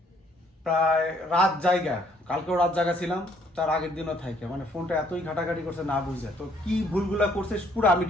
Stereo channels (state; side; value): normal; both; correlation 0.65